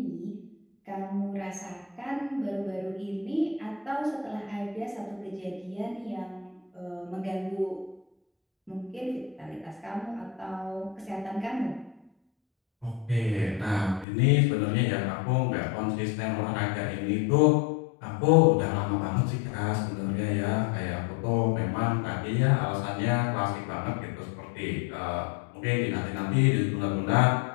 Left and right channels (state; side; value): drops out; right; at 14.1 s